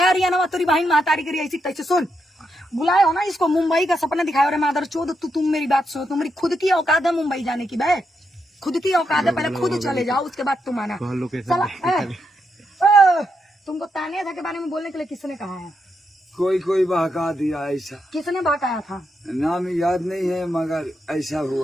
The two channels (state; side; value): normal; both; correlation 0.82